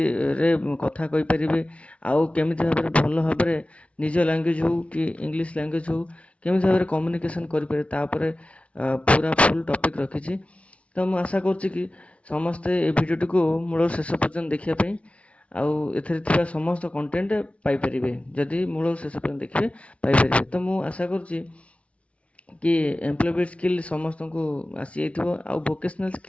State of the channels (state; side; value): late; right; 0.063 ms